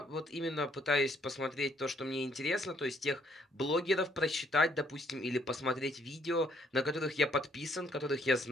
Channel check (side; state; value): both; normal; correlation 0.68